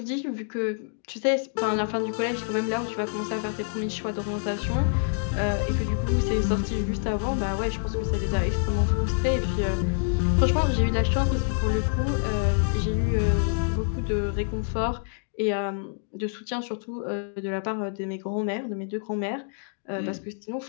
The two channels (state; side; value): silent; right; digital silence